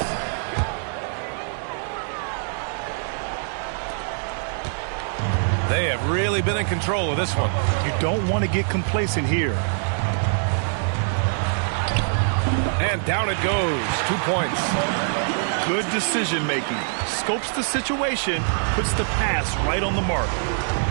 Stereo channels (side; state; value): left; silent; 58 dB below the other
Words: They have really been in control of this one. You don't want to get complacent here. And down it goes. 2 points. Good decision making. Scopes the situation, puts the pass right on the mark.